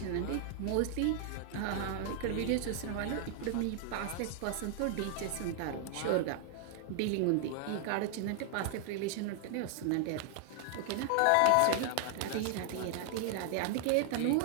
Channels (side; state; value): both; different; correlation 0.00